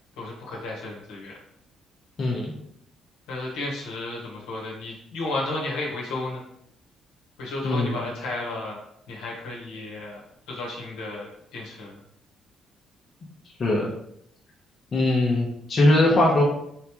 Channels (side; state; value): both; normal; correlation 0.78